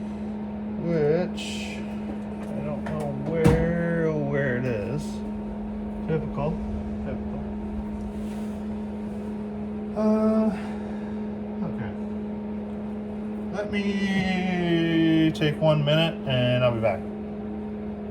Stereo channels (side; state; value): both; identical; correlation 1.00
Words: which I don't know where it is. Typical. Okay. Let me take 1 minute and I'll be back.